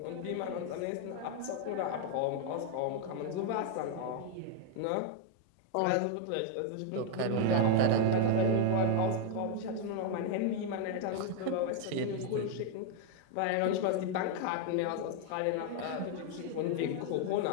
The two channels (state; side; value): different; both; correlation 0.00